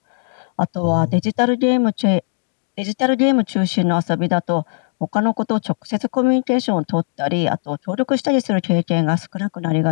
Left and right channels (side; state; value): right; silent; digital silence